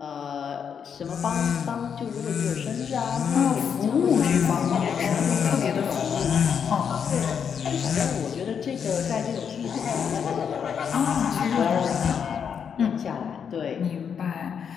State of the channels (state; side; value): quieter; right; 7.3 dB